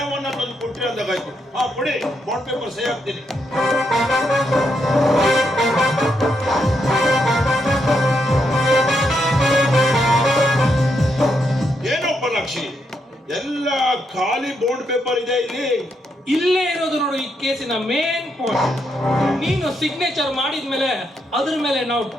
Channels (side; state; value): both; normal; correlation 0.79